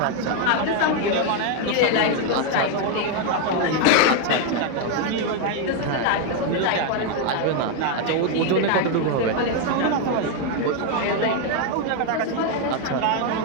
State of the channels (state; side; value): different; both; correlation 0.01